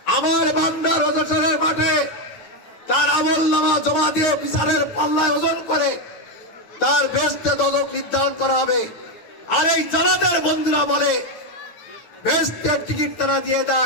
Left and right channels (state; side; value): late; right; 8.9 ms